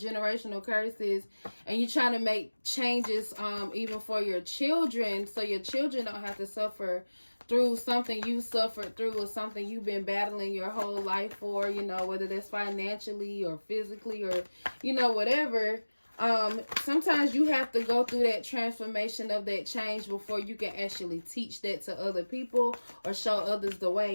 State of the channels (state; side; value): inverted; both; correlation -1.00